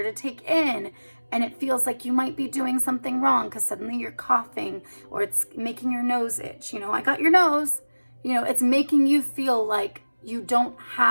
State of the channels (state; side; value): inverted; both; correlation -1.00